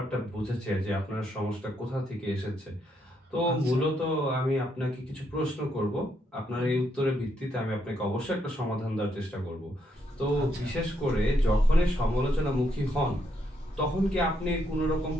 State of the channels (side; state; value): both; normal; correlation 0.76